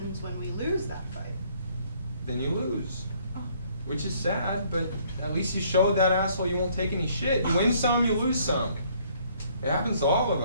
when we lose that fight? Then you lose. Which is sad, but at least you showed that asshole you won't take any shit. You win some, you lose some. It happens to all of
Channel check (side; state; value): both; inverted; correlation -0.63